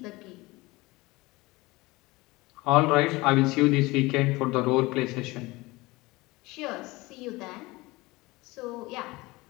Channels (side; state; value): right; quieter; 21.8 dB